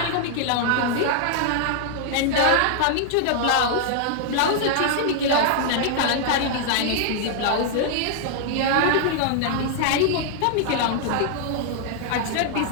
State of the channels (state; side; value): different; both; correlation 0.00